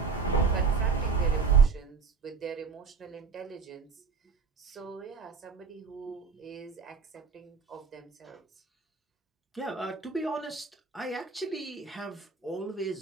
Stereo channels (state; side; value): quieter; left; 5.2 dB